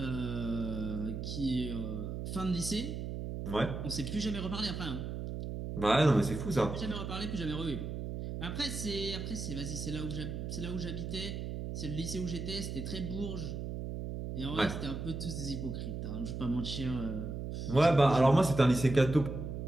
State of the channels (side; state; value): right; noise; hum, 5 dB below the sound